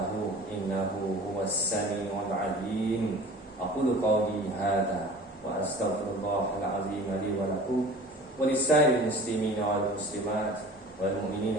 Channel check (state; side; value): normal; both; correlation 0.42